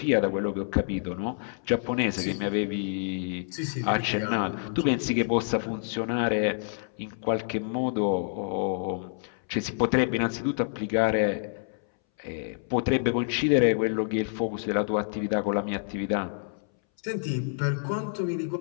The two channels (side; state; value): right; silent; 59 dB below the other